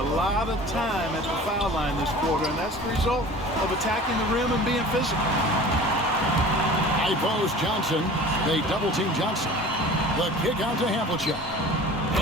lot of time at the foul line this quarter, and that's the result of attacking the rim and being physical. High post Johnson. They double-team Johnson. The kick out to Havlicek.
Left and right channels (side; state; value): both; normal; correlation 0.42